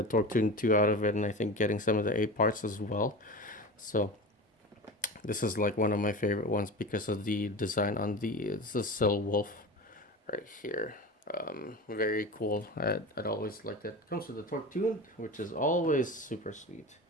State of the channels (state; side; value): normal; both; correlation 0.29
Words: Torque Tune 2 out of it, and I think getting some of the A parts as well. So this is like one of my favorite ones because of the design on it's the Sil Wolf right here. Very cool. I'd always liked it. Comes with the Torque Tune, which is always super sweet.